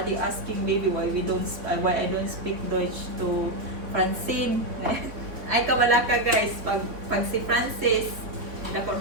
asking maybe why I don't speak Deutsch to Francine. Ay kabala ka guys, pag si Francis dako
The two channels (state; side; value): late; left; 3.6 ms